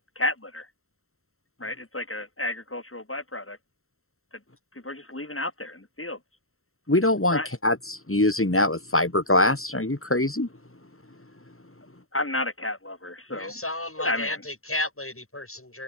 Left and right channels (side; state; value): right; late; 0.62 ms